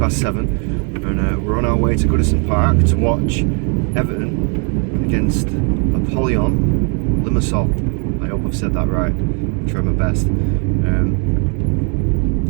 and we're on our way to Goodison Park to watch Everton against Apollon Limassol. I hope I've said that right. I'll try my best.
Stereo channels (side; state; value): left; quieter; 38.4 dB